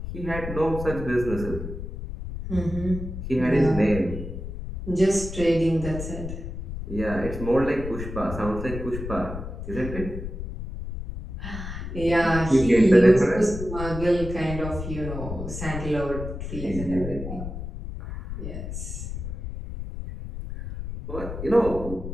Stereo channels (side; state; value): left; noise; rumble, 7 dB below the sound